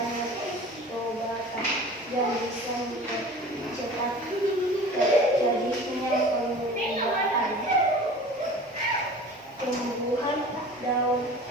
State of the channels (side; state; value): both; normal; correlation 0.40